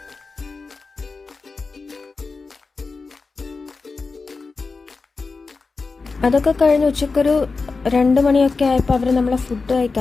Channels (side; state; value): right; quieter; 4.2 dB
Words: അതൊക്കെ കഴിഞ്ഞ് ഉച്ചക്കൊരു 2 മണിയൊക്കെ ആയപ്പോൾ അവർ നമ്മളെ ഫുഡ്